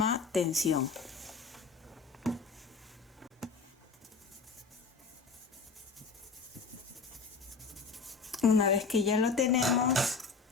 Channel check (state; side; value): quieter; right; 4.7 dB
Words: tensión. Una vez que ya lo tenemos,